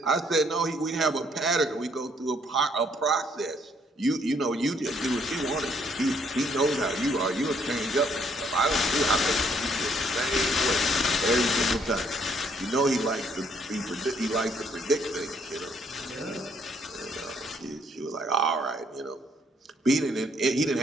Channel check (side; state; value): both; normal; correlation 0.68